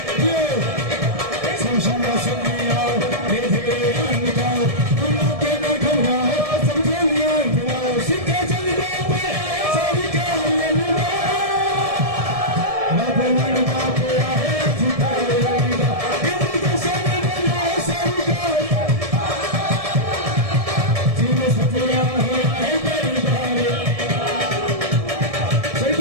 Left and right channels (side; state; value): left; late; 1.7 ms